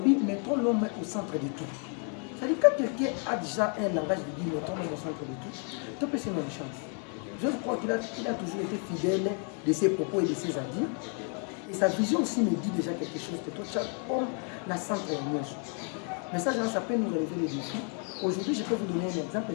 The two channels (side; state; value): right; quieter; 39.7 dB